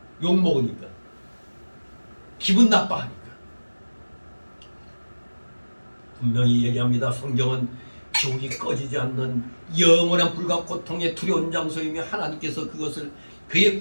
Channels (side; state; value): both; inverted; correlation -1.00